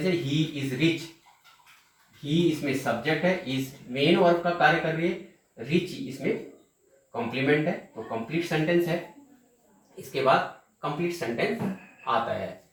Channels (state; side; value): identical; both; correlation 1.00